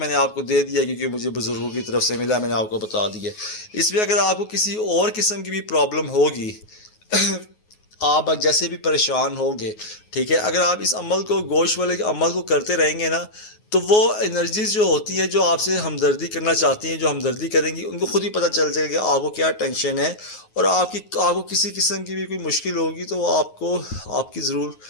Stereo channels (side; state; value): right; late; 9.4 ms